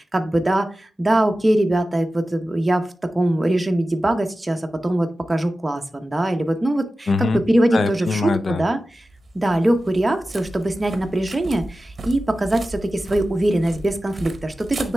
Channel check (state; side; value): normal; both; correlation 0.94